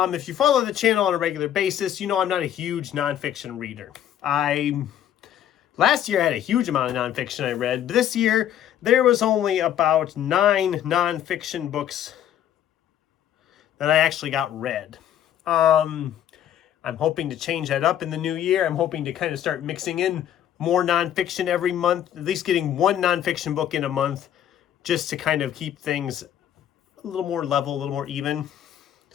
you follow the channel on a regular basis, you know I'm not a huge nonfiction reader. Last year I had a huge amount of nonfiction I read. This year, there was only about 9 nonfiction books that I actually got read. I'm hoping to change that up in the new year. I'm hoping to kind of start mixing in more nonfiction every month, at least getting one nonfiction book in a month, just to kind of keep things a little more level, a little more even.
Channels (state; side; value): quieter; right; 10.6 dB